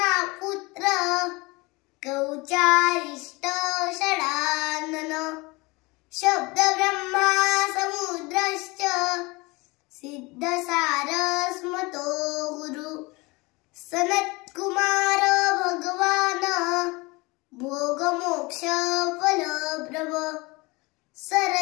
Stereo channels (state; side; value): quieter; right; 24.6 dB